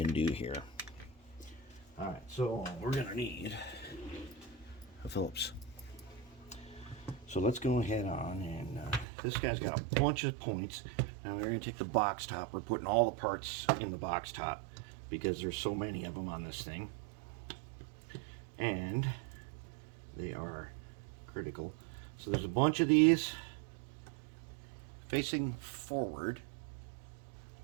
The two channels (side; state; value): left; drops out; at 9.1 s